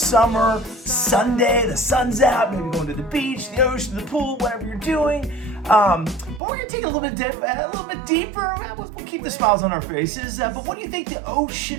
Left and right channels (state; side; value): drops out; left; at 6.4 s